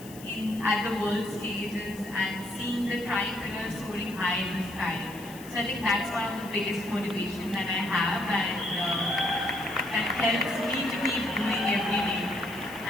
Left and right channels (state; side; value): noise; left; hiss, 18 dB below the sound